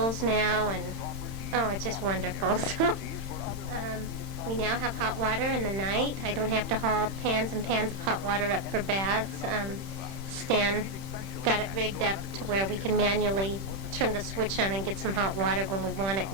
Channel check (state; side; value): late; left; 31 ms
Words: now, and, it's just wonderful. So we now have hot water in the night. I don't have to haul pans and pans of hot water up for baths. Stan got it rigged up to where we can manually turn the switch on and get some hot water when we want it